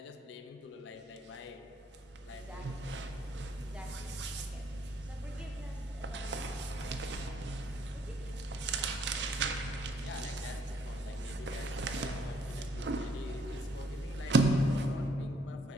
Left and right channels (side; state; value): both; normal; correlation 0.67